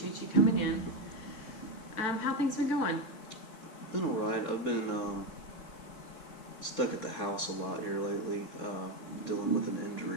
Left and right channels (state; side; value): late; right; 4.2 ms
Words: you coming in. How things been going? Been all right. I've been stuck at the house a lot here lately, dealing with an